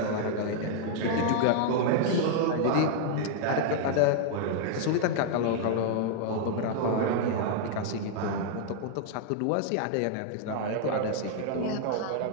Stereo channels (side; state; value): both; different; correlation -0.01